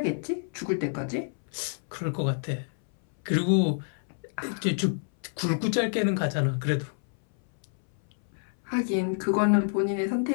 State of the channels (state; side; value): silent; right; 59 dB below the other